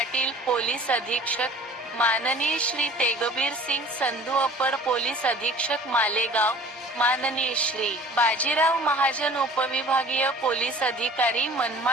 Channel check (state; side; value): normal; both; correlation 0.47